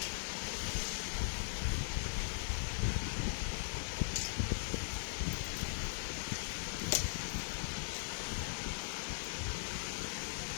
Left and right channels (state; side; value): silent; right; digital silence